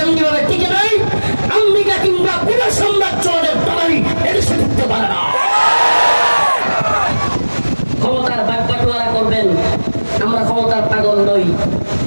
টিকে নাই, আমেরিকা কিংবা পুরো সাম্রাজ্যের দালালি এদেশে ঢুকতে পারে না। ক্ষমতার বাগবাটোয়ারা করবেন, আমরা ক্ষমতার পাগল নই।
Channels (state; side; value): inverted; both; correlation -1.00